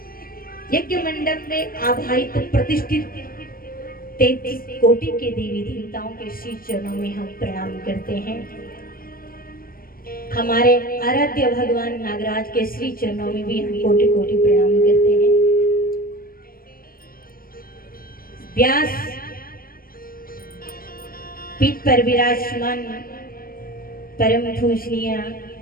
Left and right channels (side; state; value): right; late; 0.42 ms